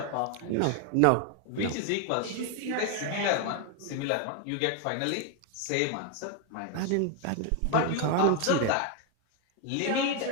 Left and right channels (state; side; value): different; both; correlation 0.01